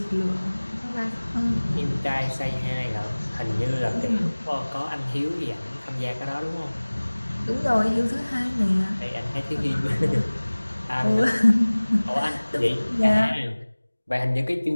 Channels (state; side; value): inverted; both; correlation -1.00